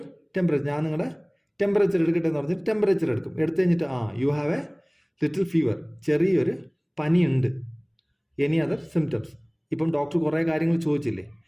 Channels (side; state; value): both; identical; correlation 1.00